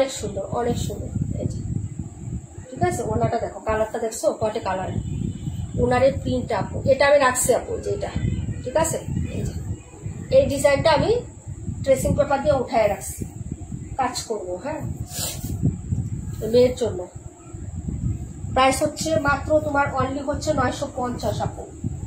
সুন্দর অনেক সুন্দর, এই যে ঠিক আছে। ওনাটা দেখো, কালারটা দেখছো কয়টা কালার, ওনারের প্রিন্ট আপু, এটা আমি রাখছি আপু যে এটা, ঠিক আছে। এই যে এই ডিজাইনটা আমি ট্রেসিং পেপার দিয়ে উঠায় রাখছি, কাজ করবো, হ্যাঁ মেয়ের জন্য। প্রাইস হচ্ছে মাত্র তোমার অনলি হচ্ছে 950 আপু,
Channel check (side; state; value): both; identical; correlation 1.00